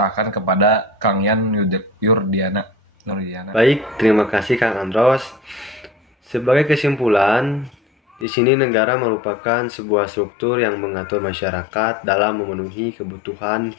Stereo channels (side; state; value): right; drops out; at 8.2 s